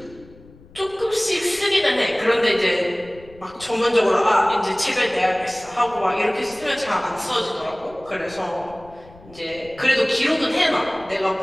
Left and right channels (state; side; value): noise; left; rumble, 23 dB below the sound